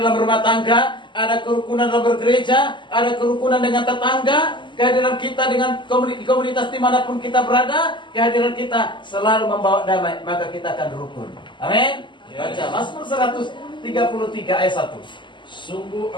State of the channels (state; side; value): late; right; 0.23 ms